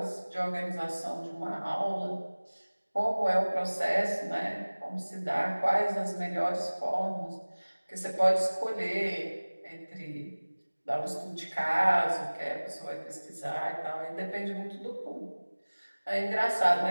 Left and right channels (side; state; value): both; inverted; correlation -1.00